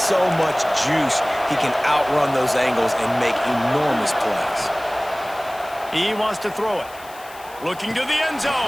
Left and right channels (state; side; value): noise; left; hiss, 20 dB below the sound